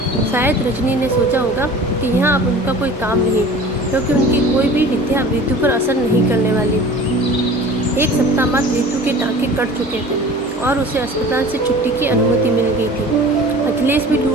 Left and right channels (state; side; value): normal; both; correlation 0.43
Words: शायद रजनी ने सोचा होगा कि यहाँ अब उनका कोई काम नहीं, क्योंकि उनकी कोई भी विद्या रितु पर असर नहीं करने वाली। 1 सप्ताह बाद रितु के टाँके कट चुके थे और उसे अस्पताल से छुट्टी की अनुमति मिल गई थी। अखिलेश भी